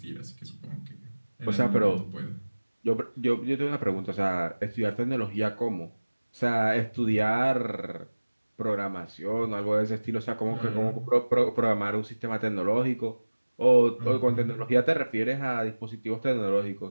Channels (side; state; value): both; inverted; correlation -1.00